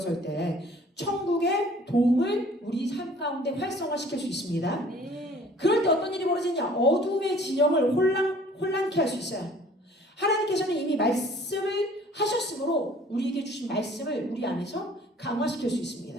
때 천국의 도움을 우리 삶 가운데 활성화시킬 수 있습니다. 그럴 때 어떤 일이 벌어지냐? 어둠의 진영을 혼란케 할 수 있어요. 하나님께서는 이미 말씀을 하셨으므로 우리에게 주신 말씀을 우리 안에서 강화시킬 수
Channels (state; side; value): normal; both; correlation 0.52